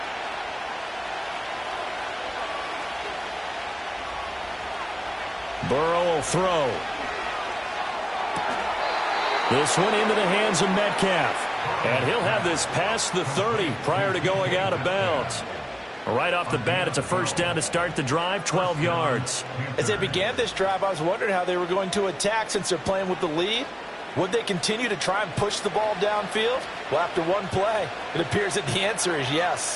Burrow will throw. This one into the hands of Metcalf. And he'll have this past the 30 prior to going out of bounds. Right off the bat, it's a first down to start the drive, 12 yards. As they began this drive, I was wondering how they were going to attack since they're playing with the lead. Would they continue to try and push the ball downfield? Well, after one play, it appears that the answer is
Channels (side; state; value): both; identical; correlation 1.00